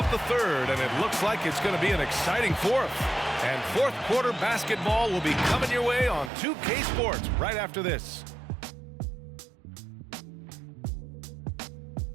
the third, and it looks like it's going to be an exciting fourth. And fourth quarter basketball will be coming your way on 2K Sports right after this.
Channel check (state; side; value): drops out; left; at 6.3 s